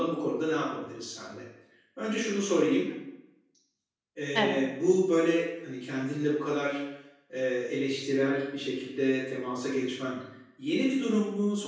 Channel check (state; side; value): identical; both; correlation 1.00